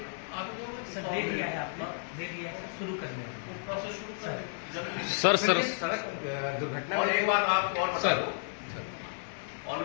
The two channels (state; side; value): silent; right; digital silence